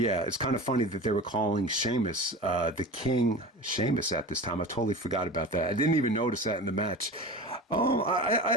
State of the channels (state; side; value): normal; both; correlation 0.32